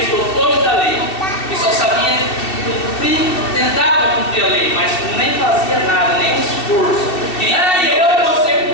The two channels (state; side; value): late; right; 2.7 ms